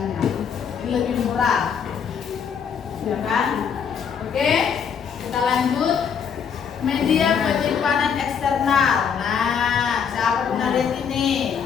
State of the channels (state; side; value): quieter; right; 7.1 dB